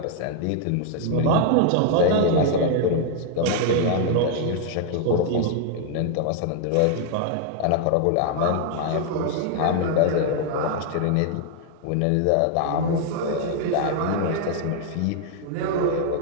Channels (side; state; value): both; different; correlation 0.00